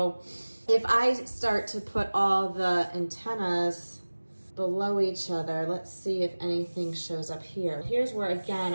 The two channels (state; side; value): inverted; both; correlation -1.00